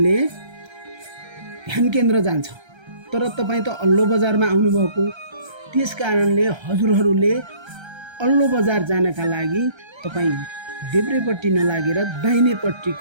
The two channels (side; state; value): left; late; 1.3 ms